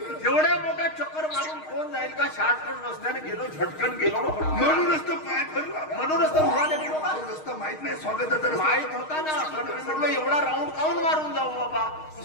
एवढ्या मोठ्या चक्कर मारून कोण जाईल का? शॉर्टकट रस्त्याने गेलो, झटकन गेलो ना. म्हणूनच तर पाय फिरला. म्हणूनच तर धुवाले गेलो का? रस्ता माहित नाही स्वागताचा रस्ता. माहित होता ना, पण मी म्हटलं एवढा राऊंड काऊन मारून जाऊ बाबा,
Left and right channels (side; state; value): right; late; 6.4 ms